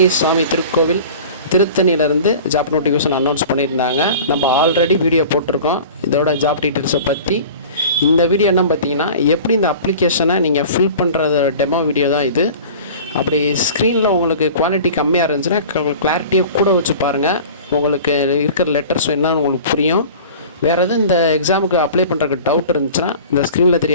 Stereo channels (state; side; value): inverted; both; correlation -0.40